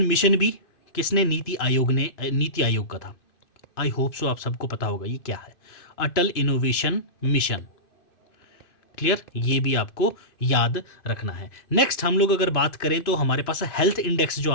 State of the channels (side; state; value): right; late; 2.9 ms